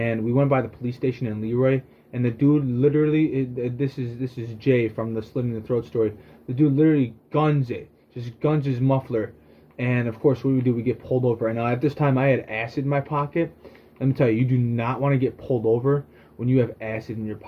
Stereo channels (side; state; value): both; identical; correlation 1.00